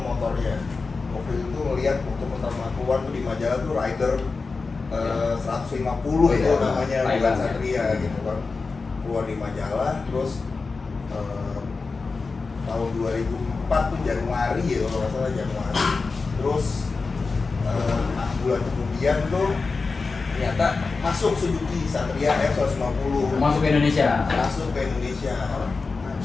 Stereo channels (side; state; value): right; quieter; 4.2 dB